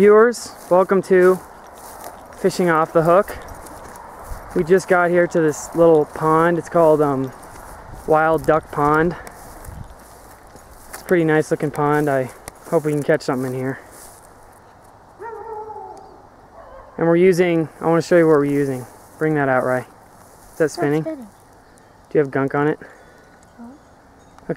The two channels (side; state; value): both; identical; correlation 1.00